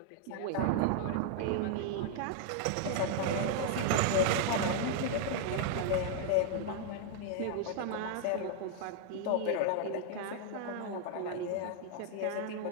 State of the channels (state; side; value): different; both; correlation 0.00